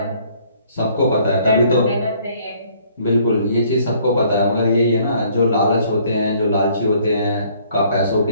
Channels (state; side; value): inverted; both; correlation -0.61